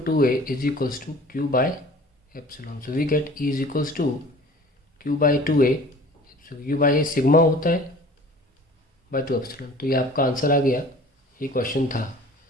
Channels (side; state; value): both; normal; correlation 0.46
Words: 2a is equals to q by epsilon. So we get E is equals to q by 2a. So q by a sigma होता है by 2 epsilon. तो ये आपका answer आ गया. ये question था